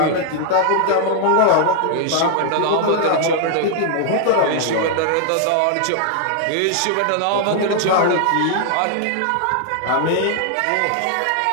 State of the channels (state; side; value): different; both; correlation 0.00